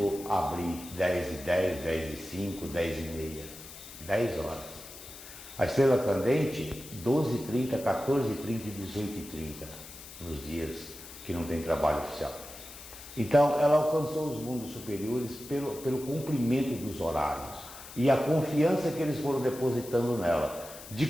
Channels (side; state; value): left; noise; hiss, 15 dB below the sound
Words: abrir 10h10, 10h05, 10h30, 10 horas. A estrela candente, 12h30, 14h30 e 18h30, nos dias que não tem trabalho oficial. Então, ela alcançou os mundos superiores pelo cumprimento dos horários e a confiança que eles foram depositando nela. De